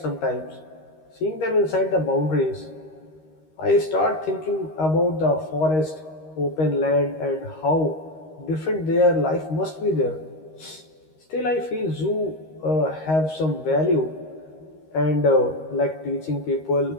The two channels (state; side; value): late; right; 13 ms